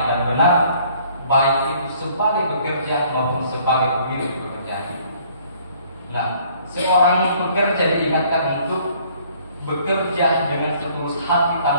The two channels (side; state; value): both; inverted; correlation -0.59